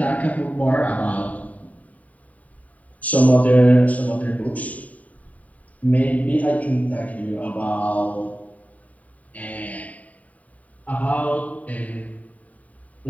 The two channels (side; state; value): right; late; 0.070 ms